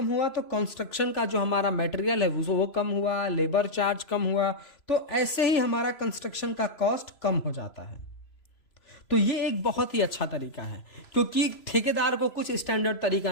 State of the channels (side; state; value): right; late; 3.0 ms